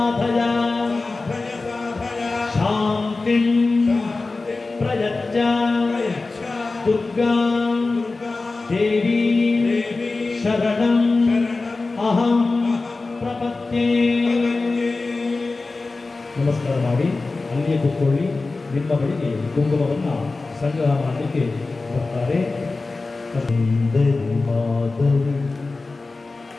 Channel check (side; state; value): right; quieter; 3.6 dB